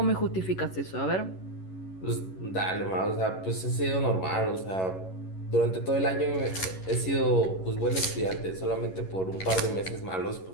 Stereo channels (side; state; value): right; late; 11 ms